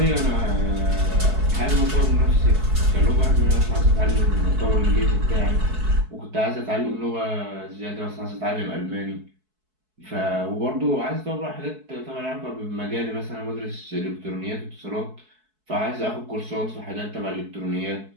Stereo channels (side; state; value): left; late; 4.6 ms